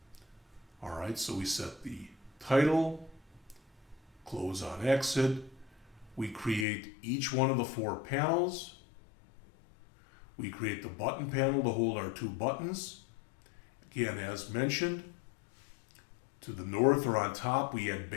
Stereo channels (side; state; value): right; drops out; at 6.7 s